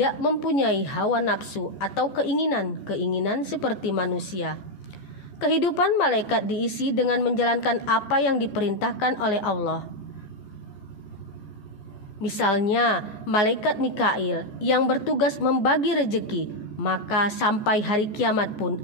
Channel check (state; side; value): late; right; 14 ms